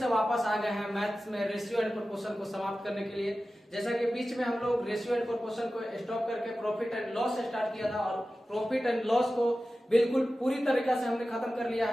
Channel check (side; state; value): both; normal; correlation 0.95